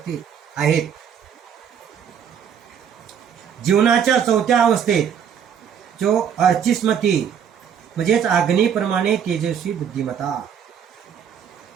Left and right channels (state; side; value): quieter; left; 8.1 dB